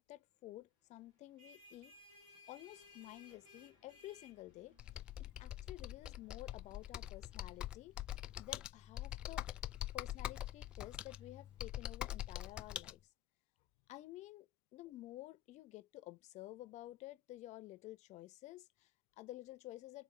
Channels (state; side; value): quieter; right; 12.6 dB